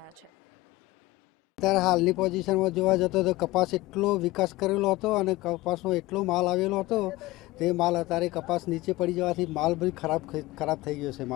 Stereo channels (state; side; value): quieter; right; 19.2 dB